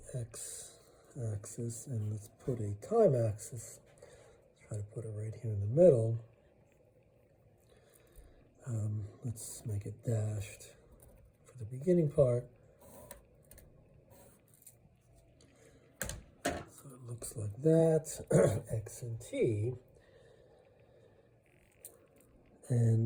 x-axis, and let's put a time axis. Try to put it right here in the middle. Let's make it dashed for the beginning part. So it looks like that, x and t.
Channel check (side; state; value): both; identical; correlation 1.00